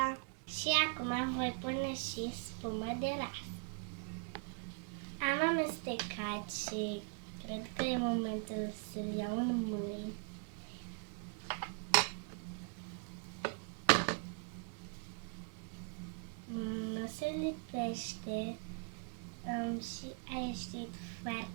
Și acum voi pune și spumă de ras. Am amestecat și cred că e momentul să-l iau în mâini. Nu se lipește și a ieșit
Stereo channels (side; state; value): left; quieter; 37.6 dB